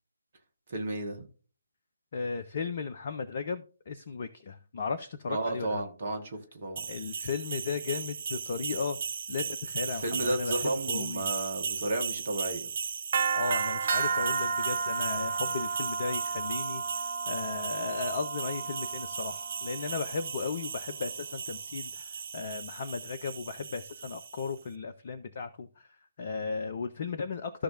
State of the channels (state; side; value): inverted; both; correlation -0.74